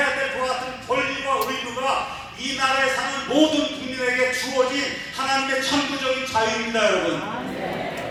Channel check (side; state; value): both; identical; correlation 1.00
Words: 될 것 같은 권리와 의무가 이 나라에 사는 모든 국민에게 주어진 하나님의 천부적인 자유입니다, 여러분.